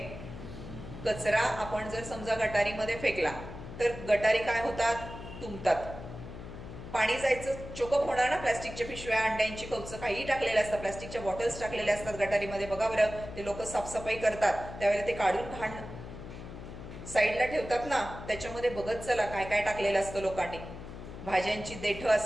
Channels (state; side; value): noise; left; hum, 12 dB below the sound